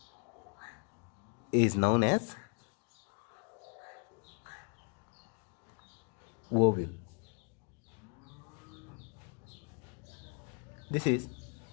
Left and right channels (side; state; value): right; quieter; 37.6 dB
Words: is known as ovule. This is